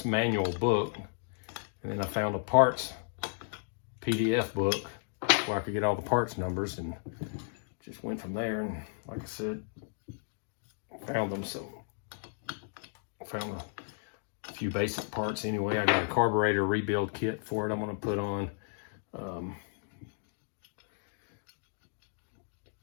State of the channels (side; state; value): right; silent; digital silence